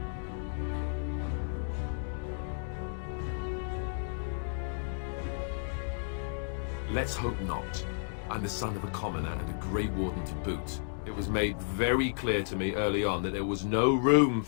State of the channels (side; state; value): right; silent; digital silence